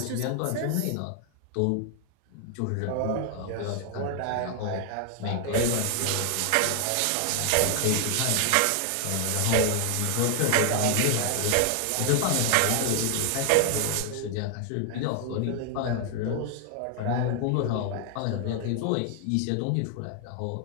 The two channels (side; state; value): both; different; correlation 0.00